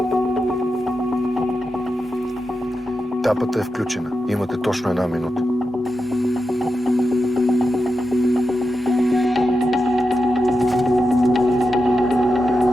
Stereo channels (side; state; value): both; normal; correlation 0.89